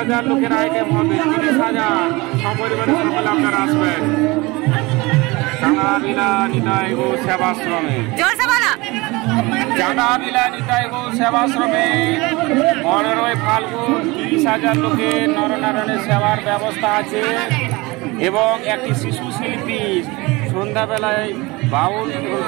লোকের আইটেম হবে, 30,000 সপরিবারে সকলে আপনারা আসবেন চাঁদাবিলা নিতাই গো সেবাশ্রমে। চাঁদাবিলা নিতাই গো সেবাশ্রমে 15ই ফাল্গুন 30,000 লোকের নরনারায়ণের সেবার ব্যবস্থা আছে এবং একটি শিশু শিল্পী সন্ধ্যাবেলায় বাউল এবং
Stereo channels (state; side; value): quieter; left; 23.4 dB